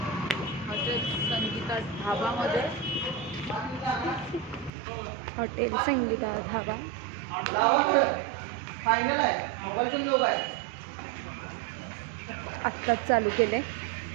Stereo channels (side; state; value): left; drops out; at 4.7 s